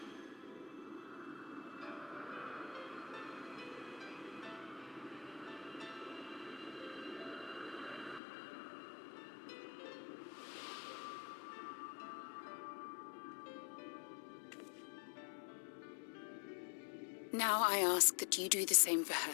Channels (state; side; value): drops out; right; at 8.2 s